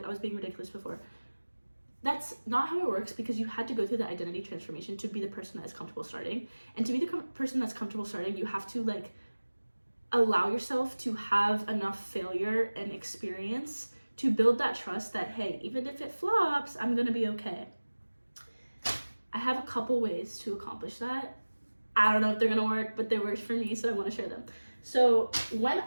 I was being ridiculous before. That's not how it works, because you had to go through the identity transformation to be the person that is comfortable starting. And to be the person that's comfortable starting, you have to, like, allow yourself to have enough failure and experience to build that trust that, hey, even if it flops, I'm gonna be okay. I have a couple ways to accomplish that. I don't know if they're gonna work, but they worked for me, so I want to share them. So when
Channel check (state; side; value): inverted; both; correlation -1.00